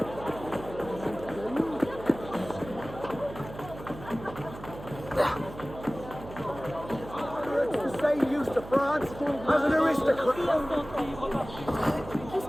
The same use to France as an aristocrat. Qu'est-ce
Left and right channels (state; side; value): noise; right; hum, 14 dB below the sound